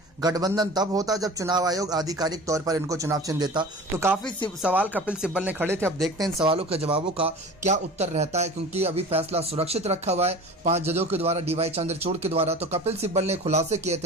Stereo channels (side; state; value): both; normal; correlation 0.38